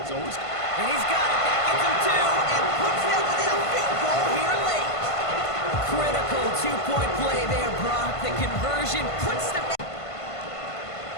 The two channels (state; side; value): late; right; 1.5 ms